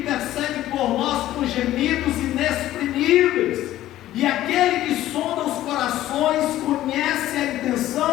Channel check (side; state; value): right; quieter; 14.0 dB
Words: por nós com gemidos inexprimíveis, e aquele que sonda os corações conhece a